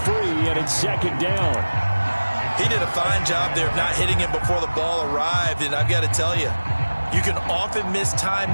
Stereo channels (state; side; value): inverted; both; correlation -1.00